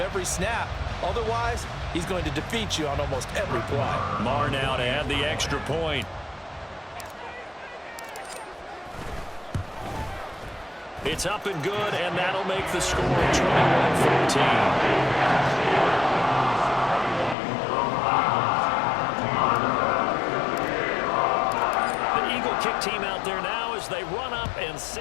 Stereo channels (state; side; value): drops out; right; at 17.4 s